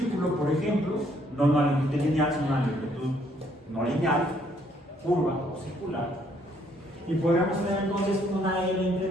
por ejemplo, no una longitud lineal, sino una longitud no lineal, curva o circular. Y podríamos tener entonces una L entre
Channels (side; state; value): both; normal; correlation 0.67